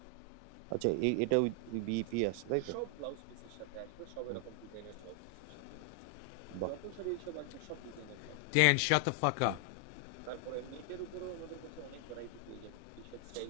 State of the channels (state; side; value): different; both; correlation 0.00